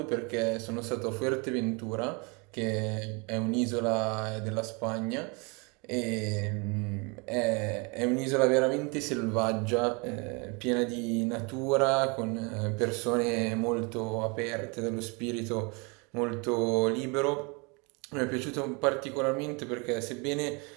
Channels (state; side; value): quieter; left; 30.8 dB